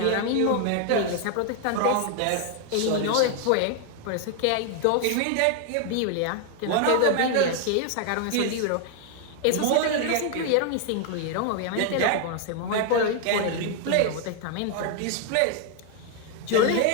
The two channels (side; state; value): both; different; correlation 0.01